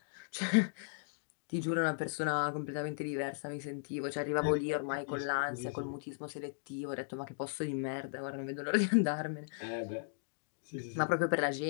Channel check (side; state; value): right; silent; digital silence